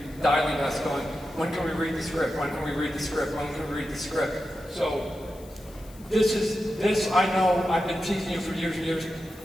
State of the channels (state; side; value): noise; left; hiss, 23 dB below the sound